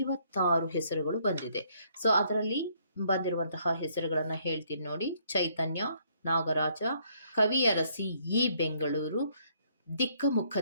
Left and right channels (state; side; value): inverted; both; correlation -0.68